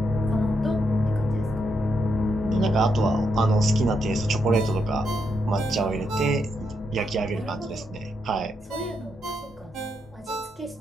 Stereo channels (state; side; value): normal; both; correlation 0.80